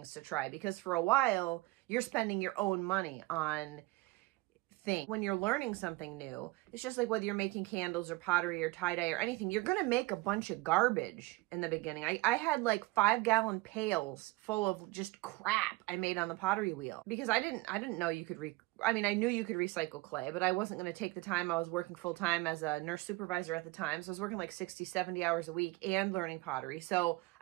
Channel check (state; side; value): quieter; left; 21.2 dB